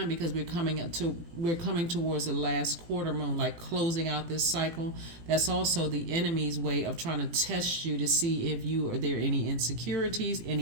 because we're coming towards the last quarter moon, like closing out this cycle, that's also the enemy's way of trying to test you to see if you are there any insecurities,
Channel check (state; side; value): late; left; 18 ms